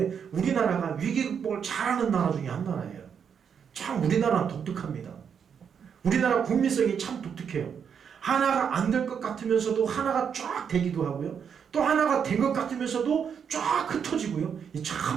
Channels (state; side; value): quieter; left; 7.3 dB